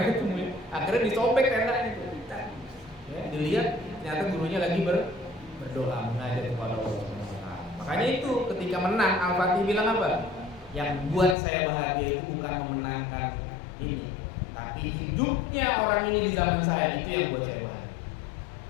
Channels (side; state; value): right; drops out; at 11.4 s